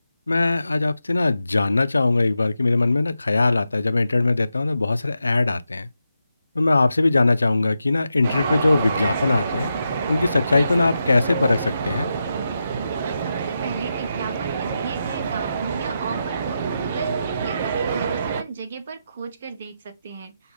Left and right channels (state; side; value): inverted; both; correlation -0.88